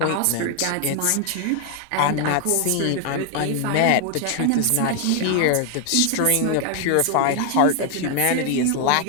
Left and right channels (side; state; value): both; different; correlation 0.00